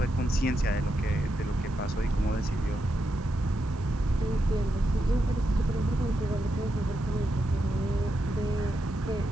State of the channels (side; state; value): right; noise; hiss, 28 dB below the sound